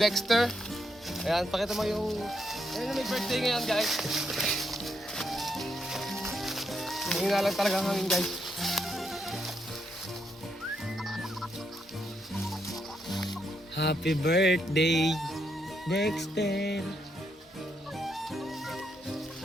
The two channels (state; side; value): normal; both; correlation 0.78